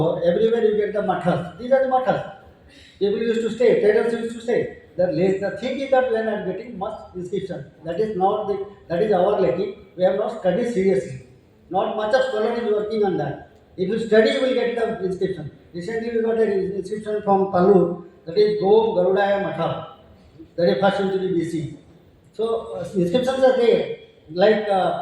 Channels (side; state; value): both; identical; correlation 1.00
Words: everywhere you get the mathas. These are the mathas. People used to stay, traders used to stay. The thing is that we are not getting much inscription. That is not the, that is our lacking. We have not studied seriously. Not much of scholar is working on that. If you study, you will get the inscription. Recently, we got an inscription from Palur, that is Go Garudaya Matha, that is first century BC. So inscriptions are there, like